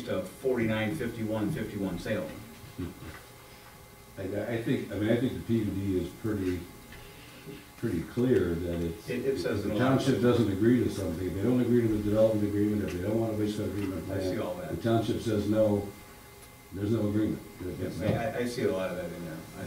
a 49-51-51 Salem. I think the PUD is pretty clear that It says if in the a lot of township places. doesn't agree to something, if they don't agree to the development agreement, if they don't want a wastewater treatment I see plant, all that. the township says no, there's no agreement. Yes, It's no. I see a lot of that in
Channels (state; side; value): identical; both; correlation 1.00